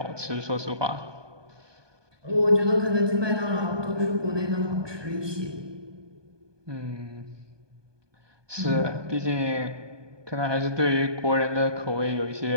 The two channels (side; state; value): left; late; 1.2 ms